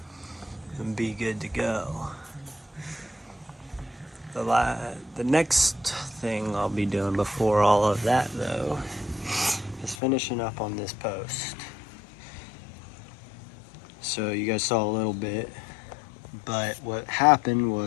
and be good to go. The next thing I'll be doing before all of that, though, is finishing up on this post. So you guys saw a little bit, but what happened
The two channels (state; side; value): drops out; right; at 10.0 s